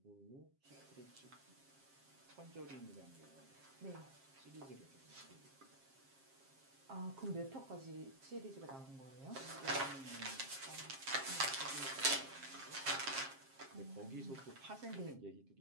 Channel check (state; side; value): late; left; 7.4 ms